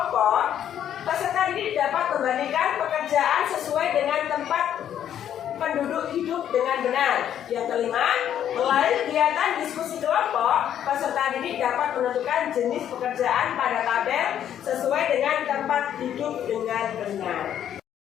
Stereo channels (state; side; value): quieter; right; 10.1 dB